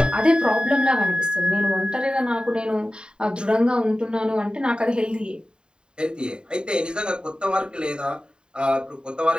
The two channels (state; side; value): late; left; 0.049 ms